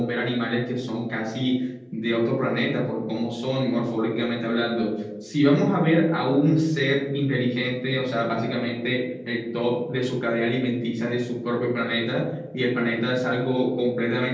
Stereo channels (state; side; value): identical; both; correlation 1.00